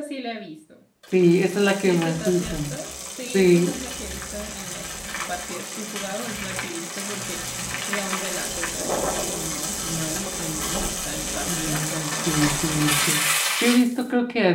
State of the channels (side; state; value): both; identical; correlation 1.00